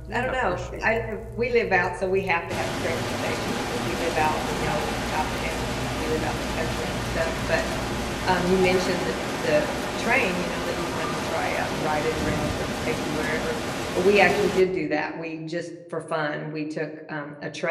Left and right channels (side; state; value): both; identical; correlation 1.00